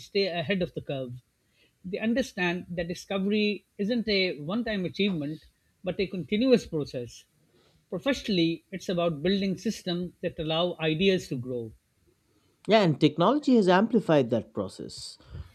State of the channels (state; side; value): identical; both; correlation 1.00